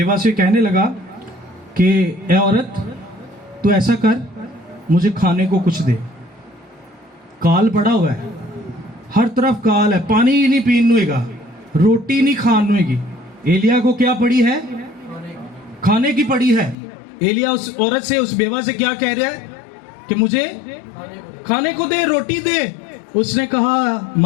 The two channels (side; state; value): right; drops out; at 16.8 s